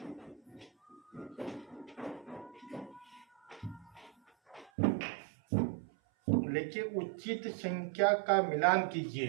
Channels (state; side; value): drops out; left; at 4.7 s